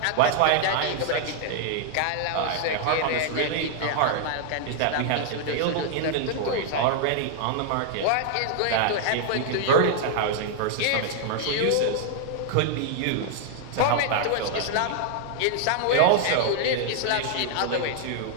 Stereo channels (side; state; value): both; different; correlation 0.00